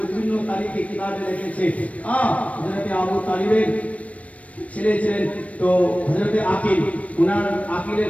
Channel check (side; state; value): right; late; 0.066 ms